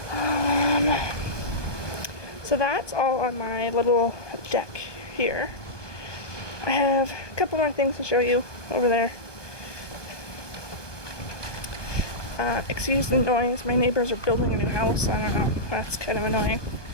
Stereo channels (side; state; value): right; late; 1.2 ms